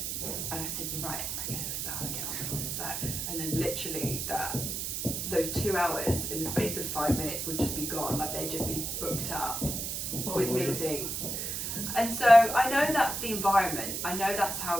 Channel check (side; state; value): right; noise; hiss, 3 dB below the sound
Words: and I said, "You're right, I'm going to start and get on with this back." And then literally those 2 hours in the space of 5 minutes would just be gone, like they'd just be booked up with meetings. And so I know that's the environment. I know that's